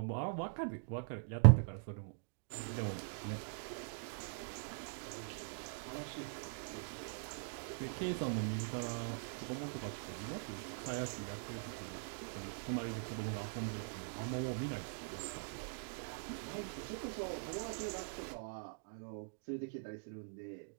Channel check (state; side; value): silent; left; digital silence